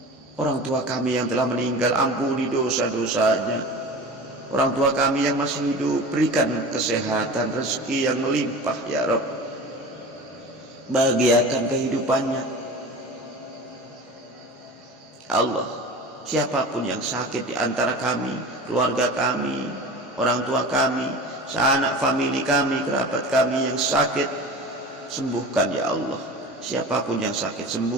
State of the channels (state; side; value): normal; both; correlation 0.35